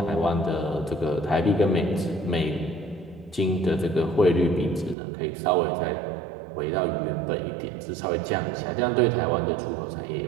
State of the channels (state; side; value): drops out; left; at 5.0 s